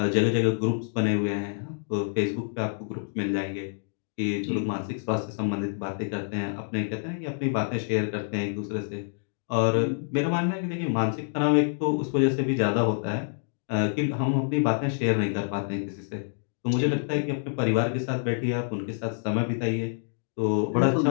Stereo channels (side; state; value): right; silent; digital silence